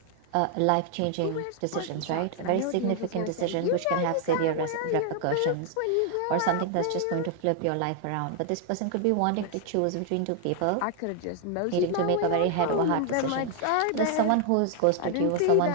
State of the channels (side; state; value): both; different; correlation 0.00